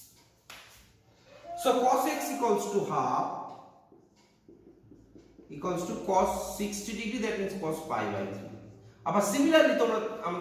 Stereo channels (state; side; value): identical; both; correlation 1.00